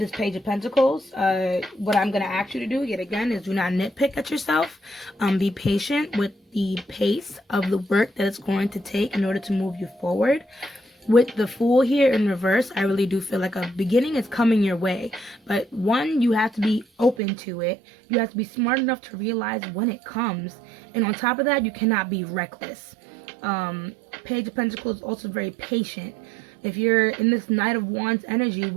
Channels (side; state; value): left; drops out; at 17.2 s